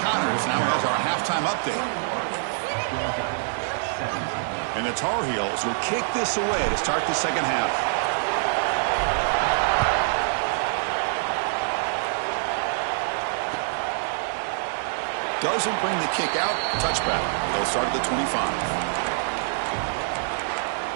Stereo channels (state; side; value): silent; left; 62 dB below the other